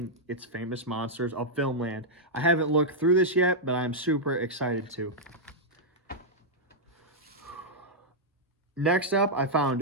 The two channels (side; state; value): both; normal; correlation -0.06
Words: it's Famous Monsters of Filmland. I haven't looked through this yet, but I'm super excited to. Next up, I